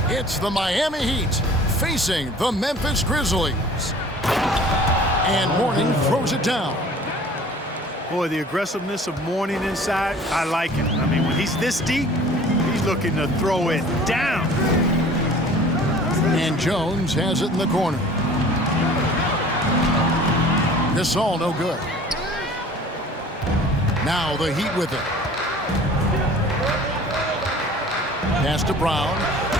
It's the Miami Heat facing the Memphis Grizzlies. And Mourning throws it down. Boy, the aggressiveness of Mourning inside, I like it. I mean, when he's this deep, he's looking to throw it down. And Jones has it in the corner. This all no good. Now the Heat with it. Pass to Brown.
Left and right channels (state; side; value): normal; both; correlation 0.47